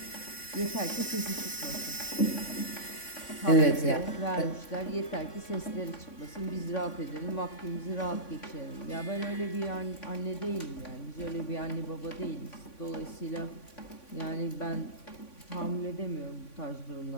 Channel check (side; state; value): right; late; 3.5 ms